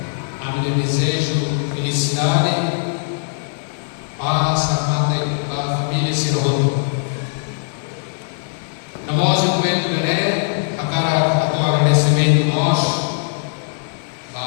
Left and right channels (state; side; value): silent; right; digital silence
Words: a meu desejo, felicidade, paz, amate a família Sirhoto. Na voz do Coelho Beré, a cara a tua agradecimento nós,